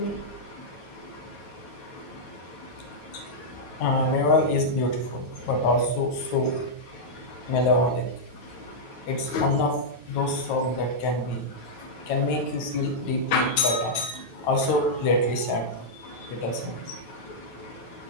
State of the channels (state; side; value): late; right; 9.2 ms